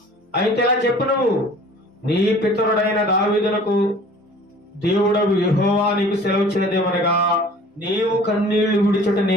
అయితే ఇలా చెప్పు, నువ్వు నీ పితరుడైన దావీదునకు దేవుడవు యెహోవా నీకు సెలవిచ్చినదేమనగా, నీవు కన్నీళ్లు విడిచుట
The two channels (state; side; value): normal; both; correlation 0.48